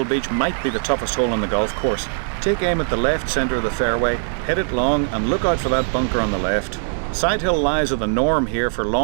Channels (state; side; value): silent; left; digital silence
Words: Beach might be the toughest hole on the golf course. Take aim at the left centre of the fairway, hit it long and look out for that bunker on the left. Side hill lies are the norm here for